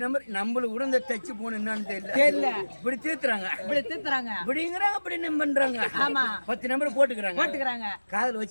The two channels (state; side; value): inverted; both; correlation -1.00